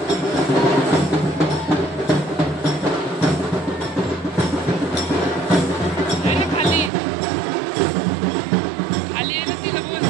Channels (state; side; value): drops out; left; at 6.9 s